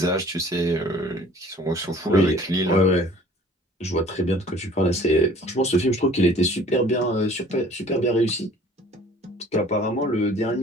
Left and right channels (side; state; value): both; normal; correlation 0.51